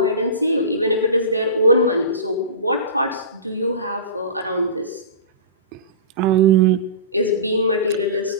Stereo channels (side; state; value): both; inverted; correlation -0.31